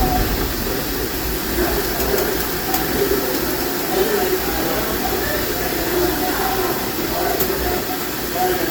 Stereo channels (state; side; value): identical; both; correlation 1.00